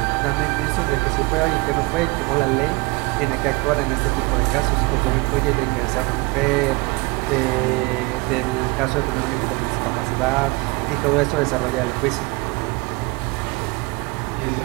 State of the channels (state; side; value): quieter; left; 26.1 dB